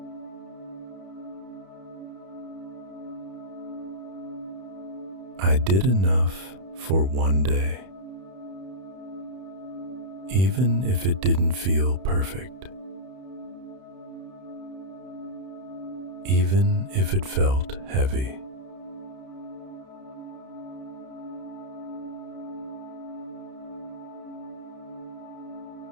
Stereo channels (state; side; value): late; left; 31 ms